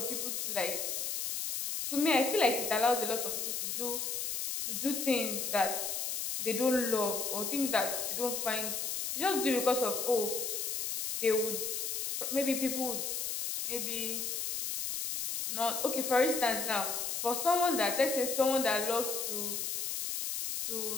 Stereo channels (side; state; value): left; noise; hiss, 2 dB below the sound